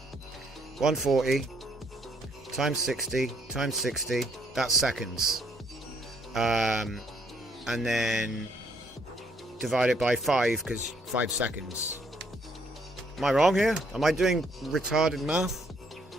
140 times 60 times 60. That's seconds. And then divide it by 5 because 5 seconds. Am I wrong here? Am I doing retarded math?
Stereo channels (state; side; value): normal; both; correlation 0.68